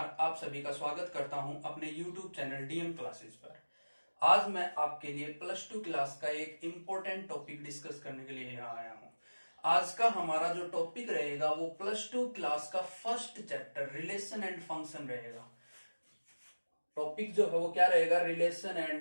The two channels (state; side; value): inverted; both; correlation -1.00